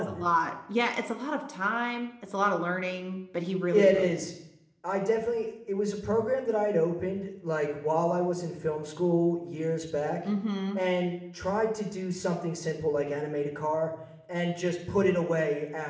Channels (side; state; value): both; identical; correlation 1.00